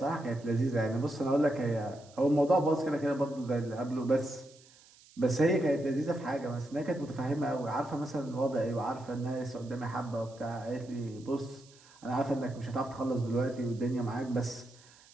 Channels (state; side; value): noise; right; hiss, 25 dB below the sound